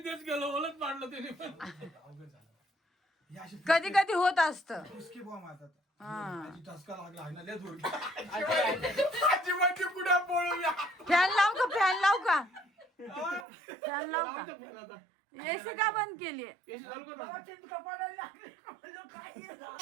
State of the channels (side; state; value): left; drops out; at 13.5 s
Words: गेलो, ओलच पाडलं त्याने पण. कधी कधी होत असतं. उसकी बुवा मारतात. हा. आजी टसका लागला आहे ना लय जोर. आजी म्हणजे कुठे पळूया. फॅन लाव का, फॅन लाव का, फॅन लाव का. एसी का बंद केली.